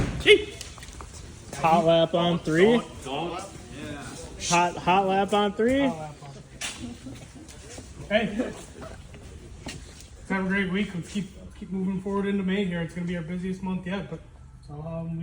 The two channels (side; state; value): both; identical; correlation 1.00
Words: Gee. Hot lap on 3. Don't. Hot lap on 3. Hey, let's have a great week. Let's keep moving forward into May here. It's going to be our busiest month yet, but